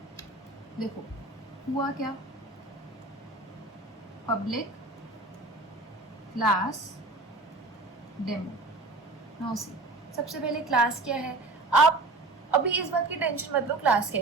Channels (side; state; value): left; quieter; 3.1 dB